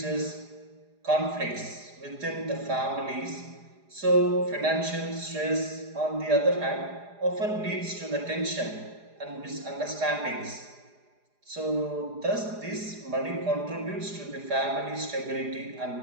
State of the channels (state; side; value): late; left; 4.9 ms